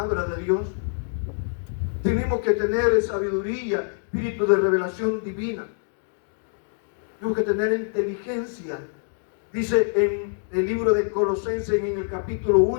de Dios. Tenemos que tener sabiduría, espíritu de revelación divina. Tenemos que tener inteligencia. Dice en el libro de Colosenses, en el capítulo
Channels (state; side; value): silent; right; digital silence